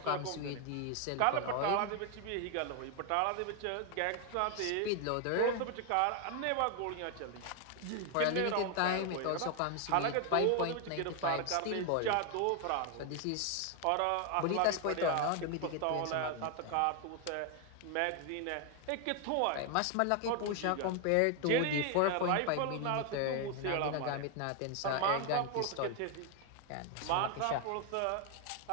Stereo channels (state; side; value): different; both; correlation 0.01